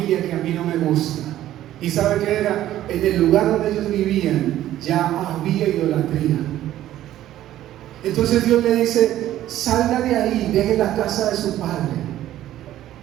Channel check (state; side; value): quieter; left; 13.2 dB